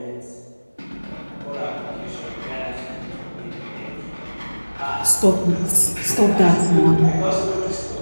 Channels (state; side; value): inverted; both; correlation -1.00